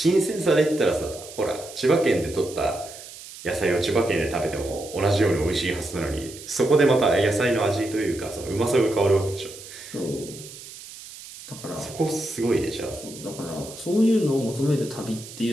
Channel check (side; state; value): right; noise; hiss, 15 dB below the sound